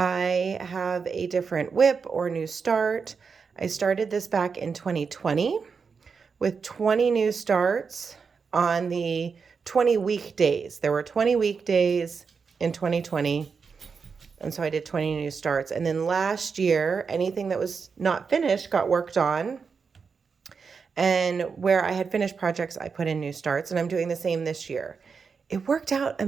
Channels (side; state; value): left; quieter; 5.5 dB